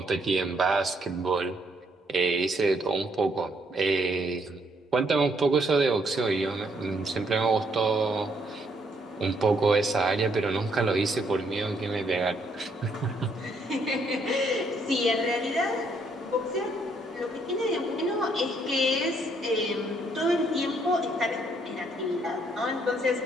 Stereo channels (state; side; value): normal; both; correlation 0.71